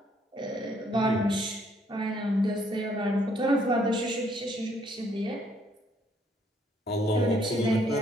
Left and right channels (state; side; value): normal; both; correlation 0.67